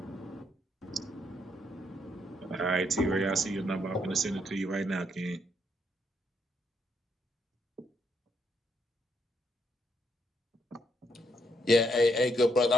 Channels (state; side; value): normal; both; correlation 0.75